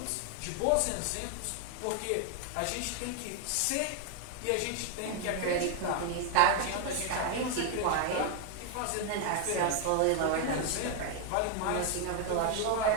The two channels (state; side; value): different; both; correlation 0.00